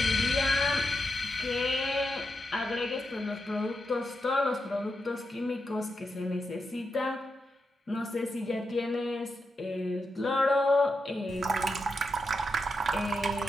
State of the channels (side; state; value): both; normal; correlation 0.86